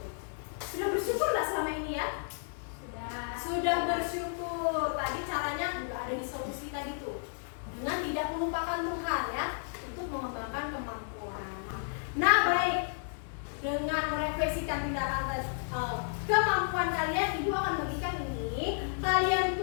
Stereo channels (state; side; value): silent; right; digital silence